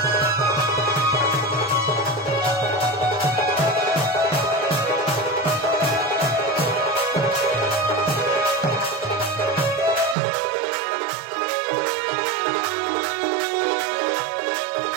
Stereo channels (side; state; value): left; drops out; at 10.2 s